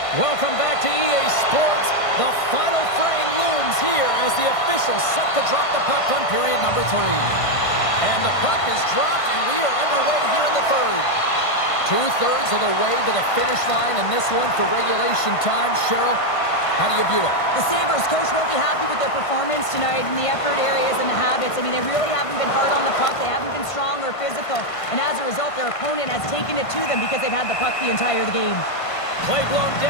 Welcome back to EA Sports. The final frame looms here as the officials set to drop the puck on period number 3. And the puck is dropped, and we are underway here in the third. 2/3 of the way to the finish line in this one for regulation time. Cheryl, how do you view it? The Sabres coach won't be happy with their performance tonight in the effort areas and the habits. I mean, they really haven't been hard on the puck. They haven't been strong or physical. And as a result, their opponent has taken it to them because they've had the puck the entire game. Play blown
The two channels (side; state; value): right; late; 1.5 ms